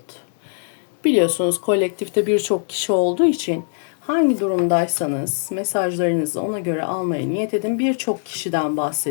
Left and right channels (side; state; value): right; silent; 61 dB below the other